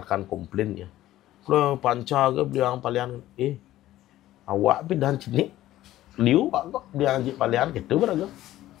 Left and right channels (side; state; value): right; quieter; 14.5 dB